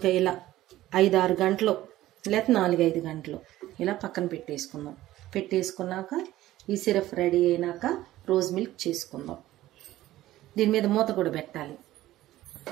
ఇలా 5-6 గంటలు లేకపోతే 4-5 గంటలు ఇలా పక్కన పెట్టేసుకున్నాక ఈ సిరప్ రెడీ అయినాక రోజ్ మిల్క్ చేసుకుందాం. దీని మీద మూత కూడా పెట్టాలి.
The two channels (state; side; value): quieter; left; 15.3 dB